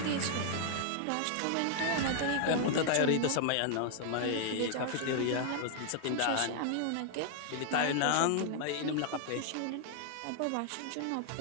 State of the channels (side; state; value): both; different; correlation 0.00